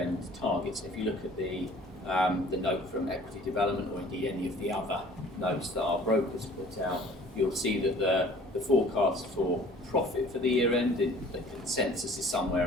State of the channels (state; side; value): normal; both; correlation 0.51